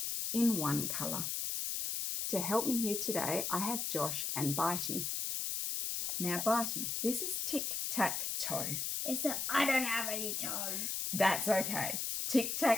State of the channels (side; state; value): left; noise; hiss, 1 dB below the sound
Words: in one colour. To help me here today, I have Josh and Bitey. Now, Bitey, this is tic-tac-toe. I don't have any toes. That's okay.